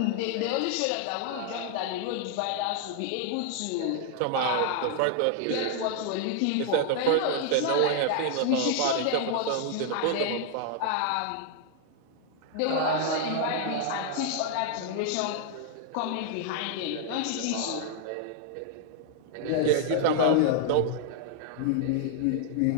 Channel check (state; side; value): different; both; correlation 0.00